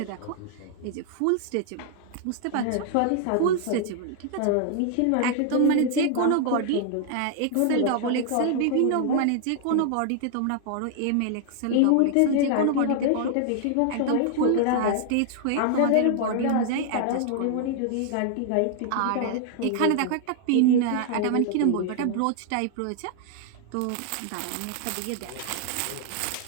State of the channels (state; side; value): different; both; correlation 0.00